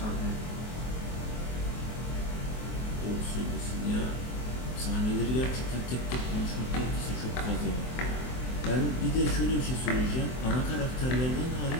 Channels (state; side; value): late; right; 23 ms